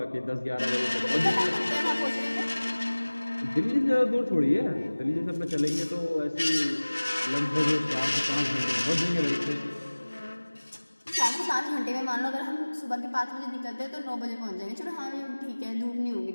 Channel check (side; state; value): both; inverted; correlation -1.00